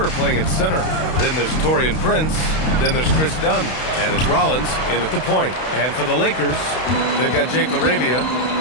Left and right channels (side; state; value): right; late; 32 ms